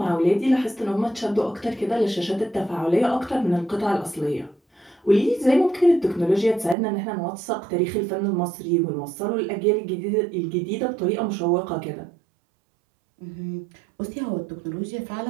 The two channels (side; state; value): left; drops out; at 6.8 s